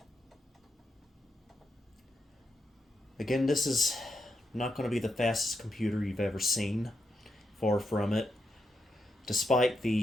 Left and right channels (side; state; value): both; normal; correlation 0.84